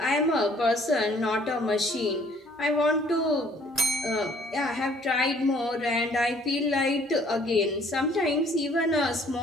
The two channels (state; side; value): normal; both; correlation 0.59